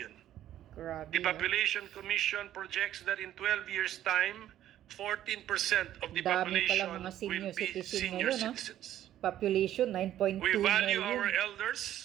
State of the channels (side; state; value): left; quieter; 12.1 dB